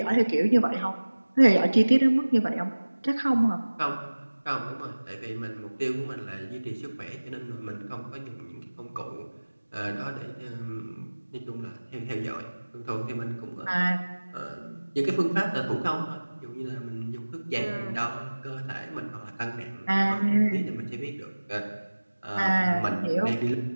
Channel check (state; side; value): inverted; both; correlation -1.00